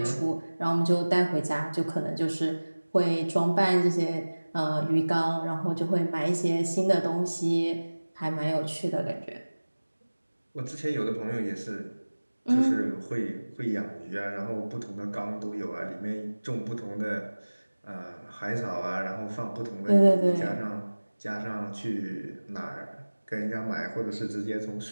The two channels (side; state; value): both; inverted; correlation -1.00